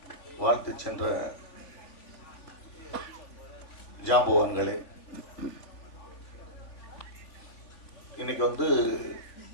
வாழ்த்து சென்ற ஜாம்பவான்களே, இன்னைக்கு வந்து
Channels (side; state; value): right; late; 3.4 ms